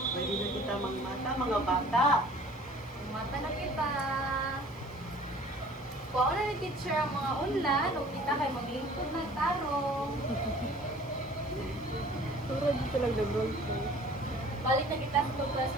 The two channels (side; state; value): left; noise; hiss, 29 dB below the sound